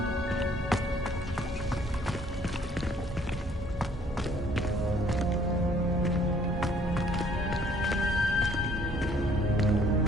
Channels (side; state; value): both; normal; correlation 0.61